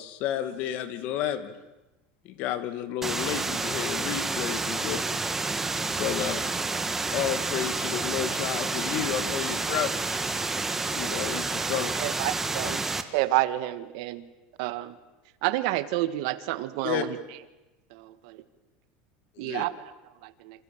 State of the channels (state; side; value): normal; both; correlation 0.41